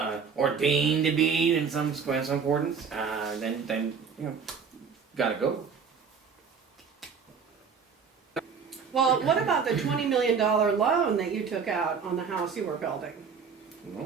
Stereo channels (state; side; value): quieter; left; 6.0 dB